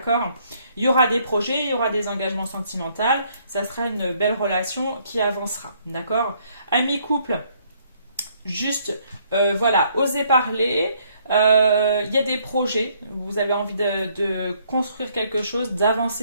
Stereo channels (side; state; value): both; inverted; correlation -0.67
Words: Il y aura des projets, il y aura des engagements sentimentaux, ça sera une belle relation qui avancera, d'accord? Amis couple, juste, voilà, osez parler. Il y a des projets, vous avez envie de construire quelque chose,